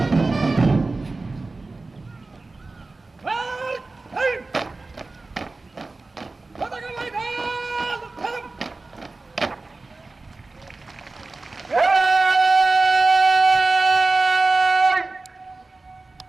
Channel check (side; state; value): left; quieter; 3.5 dB